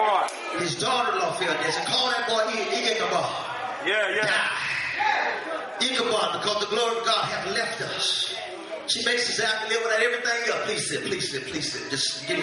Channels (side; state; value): both; identical; correlation 1.00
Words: His daughter-in-law fell dead. So call that boy Ichabod. Yeah. Ichabod, because the glory of God hath left us. She makes us have to live without everything else. Please sit. Just give